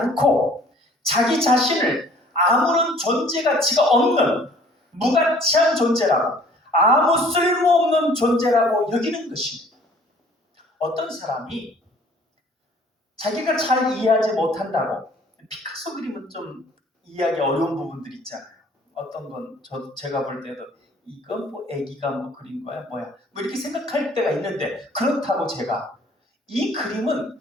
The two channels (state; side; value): normal; both; correlation 0.54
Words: 자기 자신을 아무런 존재 가치가 없는 무가치한 존재라고, 아무 쓸모없는 존재라고 여기는 것입니다. 어떤 사람이 자기가 잘 이해하지 못한다고. 피카소 그림은 좀 이해하기 어려운 부분들이 있잖아요. 어떤 건 제가 볼 때도 이건 뭐 애기가 뭐 그린 거야 뭐야 뭐 이렇게 생각할 때가 있는데, 그렇다고 제가 이 그림은